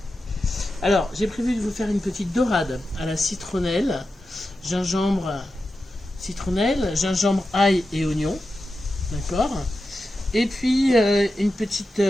Alors j'ai prévu de vous faire une petite dorade à la citronnelle, gingembre, ail et oignon, d'accord. Et puis une petite,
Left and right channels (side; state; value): both; normal; correlation 0.91